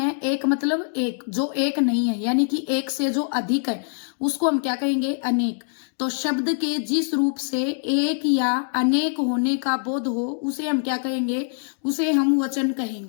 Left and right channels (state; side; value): silent; right; digital silence